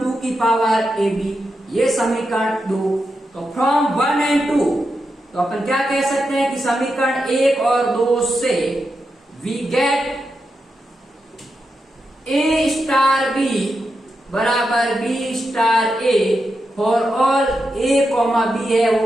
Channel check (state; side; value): normal; both; correlation 0.87